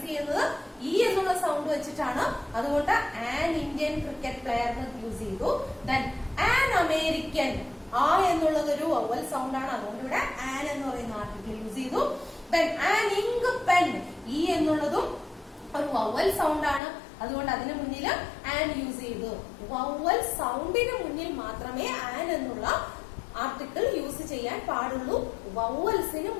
ചെയ്യുന്നത് ഇ എന്നുള്ള സൗണ്ട് വെച്ചിട്ടാണ്. അതുകൊണ്ട് an Indian cricket player use ചെയ്തു. Then an American. ആ എന്നുള്ളത് ഒരു വവ്വൽ സൗണ്ട് ആണ്. അതുകൊണ്ട് ഇവിടെ ആൻ എന്ന് പറയുന്ന ആർട്ടിക്കിൾ യൂസ് ചെയ്തു. Then an ink pen. E എന്നുള്ളതും ഒരു വവ്വൽ സൗണ്ട് ആണ്. അതുകൊണ്ട് അതിന് മുന്നിൽ ആൻ യൂസ് ചെയ്തു. വവ്വൽ സൗണ്ടിന് മുന്നിൽ മാത്രമേ ആൻ എന്നുള്ള ആർട്ടിക്കിൾ യൂസ് ചെയ്യാൻ പാടുള്ളൂ, വവ്വൽസിന്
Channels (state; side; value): drops out; right; at 16.8 s